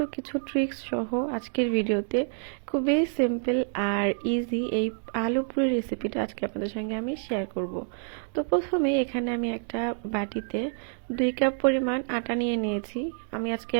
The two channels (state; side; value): silent; left; 60 dB below the other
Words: কিছু ট্রিক্স সহ আজকের ভিডিওতে খুবই সিম্পল আর ইজি এই আলু পুরি রেসিপিটা আজকে আপনাদের সঙ্গে আমি শেয়ার করব। তো প্রথমে এখানে আমি একটা বাটিতে 2 কাপ পরিমাণ আটা নিয়ে নিয়েছি। আমি আজকে